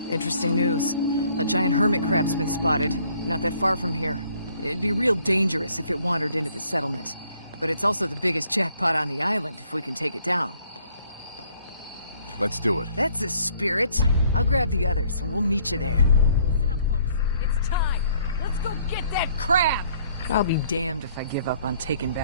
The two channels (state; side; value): inverted; both; correlation -0.63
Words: Interesting news. A giant hermit crab's been spotted, not that far from here. It'd be real dangerous if it wandered into the settlement. But it's also the biggest jackpot on the island if we can take it down. Let's do it. That's the spirit. I'll grab the others and we'll meet you there. Listen up, folks. It's time. Let's go get that crab! I'll be damned if I give up on taking